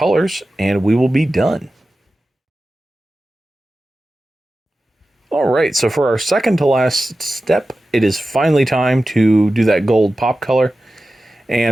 and we will be done. All right, so for our second to last step, it is finally time to do that gold pop color.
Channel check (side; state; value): both; normal; correlation 0.94